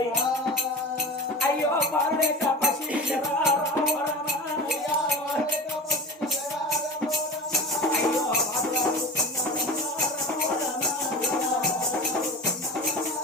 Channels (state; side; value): normal; both; correlation 0.31